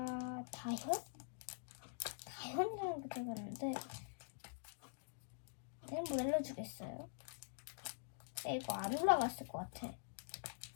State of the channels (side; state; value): right; silent; digital silence